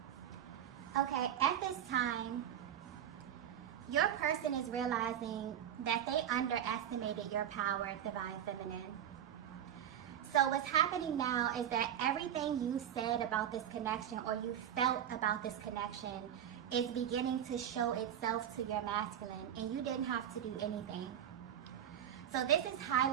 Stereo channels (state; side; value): quieter; left; 10.0 dB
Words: Okay, at this time, your person is realizing that they underestimated your power, divine feminine. So what's happening now is that everything you said about this connection, or you felt about this connection, is beginning to show itself to your masculine, and you didn't have to do anything. So this is